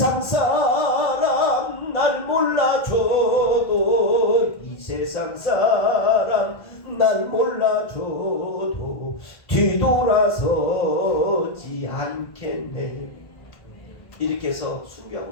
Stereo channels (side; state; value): right; late; 1.5 ms